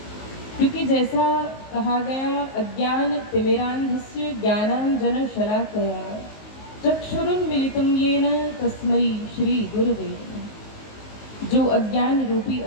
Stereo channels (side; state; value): right; late; 19 ms